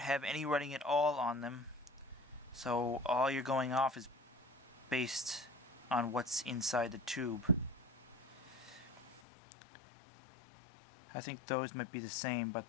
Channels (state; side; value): drops out; right; at 9.2 s